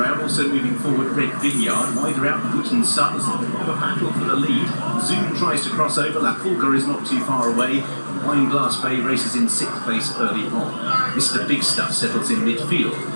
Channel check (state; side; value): inverted; both; correlation -1.00